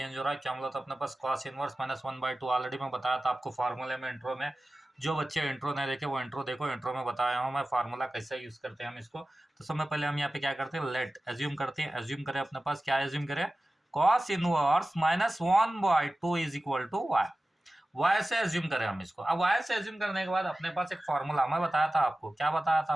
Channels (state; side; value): normal; both; correlation 0.96